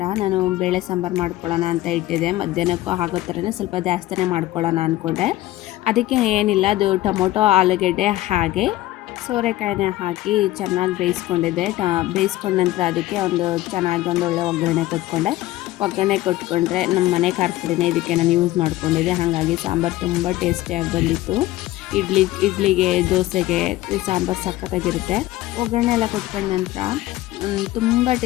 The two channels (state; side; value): quieter; right; 16.3 dB